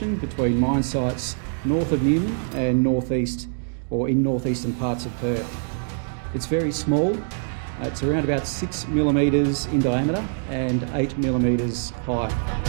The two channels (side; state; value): left; silent; 63 dB below the other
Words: between mine sites north of Newman and northeast or in northeastern parts of Perth. It's very small. It's around about 6 millimetres in diameter and 8 millimetres high.